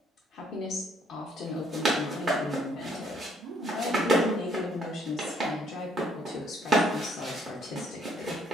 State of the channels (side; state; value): both; normal; correlation 0.67